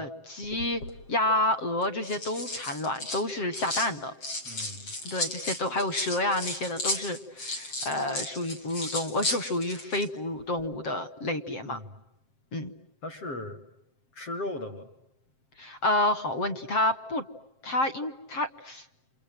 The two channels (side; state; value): right; late; 7.6 ms